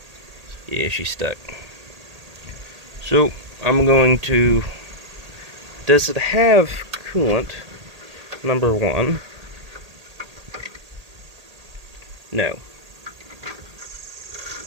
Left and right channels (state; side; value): late; left; 1.8 ms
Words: Yeah, she's stuck. So, I'm going to... Does it have coolant? Number one. No.